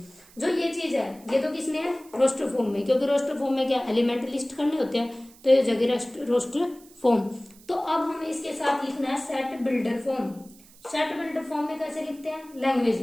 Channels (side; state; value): right; noise; hiss, 24 dB below the sound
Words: जो ये चीज है ये तो किसने है, रोस्टर फॉर्म में, क्योंकि रोस्टर फॉर्म में क्या एलिमेंट लिस्ट करने होते हैं, तो ये जगह रोस्टर फॉर्म। तो अब हमें इसके साथ लिखना है set builder form. Set builder form में कैसे लिखते हैं, लैंग्वेज